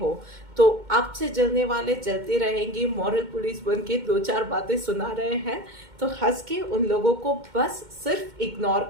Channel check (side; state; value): left; late; 2.1 ms